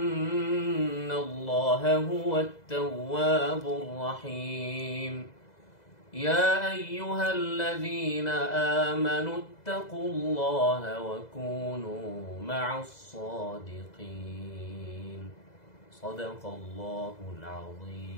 الله هو التواب الرحيم. يا أيها الذين آمنوا اتقوا الله وكونوا مع الصادقين. صدق الله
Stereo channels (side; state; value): right; late; 2.0 ms